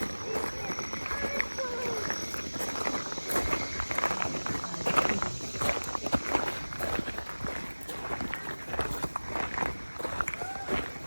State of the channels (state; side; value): inverted; both; correlation -1.00